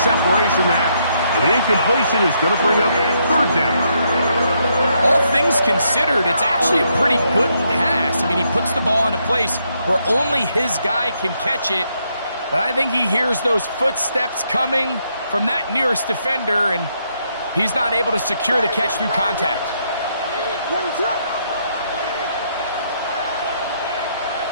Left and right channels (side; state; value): both; inverted; correlation -0.75